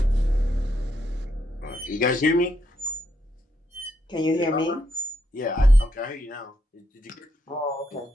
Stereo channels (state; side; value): normal; both; correlation 0.78